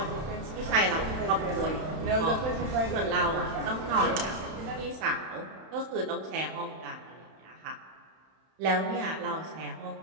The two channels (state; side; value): late; left; 31 ms